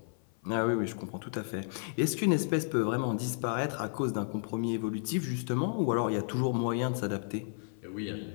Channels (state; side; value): silent; right; 55 dB below the other